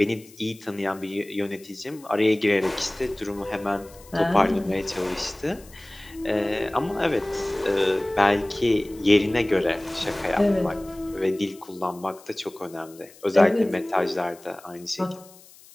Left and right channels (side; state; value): left; noise; hiss, 23 dB below the sound